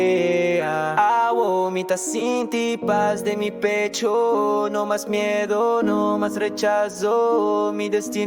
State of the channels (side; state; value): both; identical; correlation 1.00